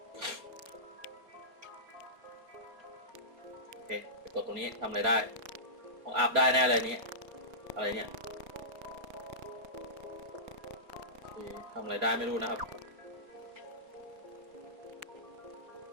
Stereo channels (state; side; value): late; left; 4.2 ms